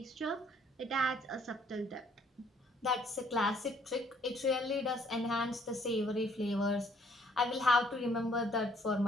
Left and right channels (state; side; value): normal; both; correlation 0.63